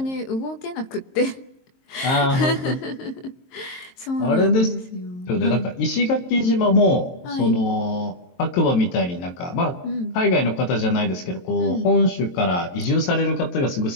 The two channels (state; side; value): late; right; 23 ms